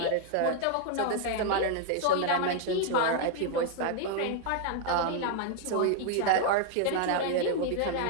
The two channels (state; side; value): different; both; correlation 0.00